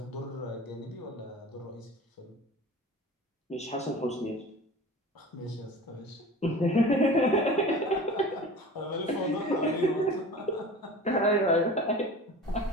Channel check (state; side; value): normal; both; correlation 0.37